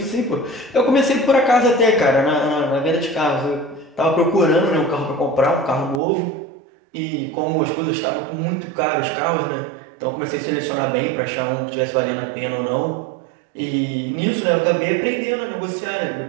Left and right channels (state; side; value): drops out; left; at 6.0 s